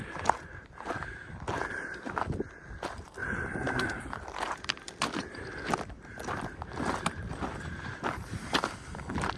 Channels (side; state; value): both; identical; correlation 1.00